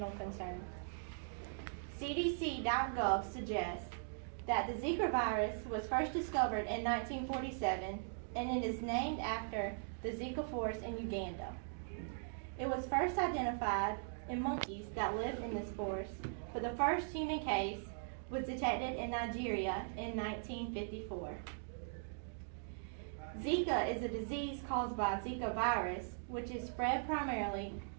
concern. CDC.gov suggests that the Zika virus was first discovered in 1947 and it is named after the Zika forest in Uganda. It was first identified in monkeys that lived in this forest, but the first human case was detected in Nigeria in 1954. Zika is a disease caused by Zika virus, which is spread primarily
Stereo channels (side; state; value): left; silent; digital silence